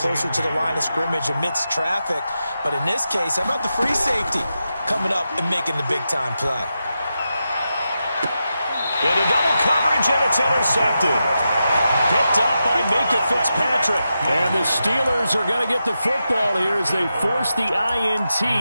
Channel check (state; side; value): inverted; both; correlation -0.88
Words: to the line of scrimmage amidst traffic. But in this case, how about the free safety coming up and making the big-time play? Into double coverage, and it's intercepted. Picked up by Minkah Fitzpatrick. And the Steelers are going to get the football here as they force the INT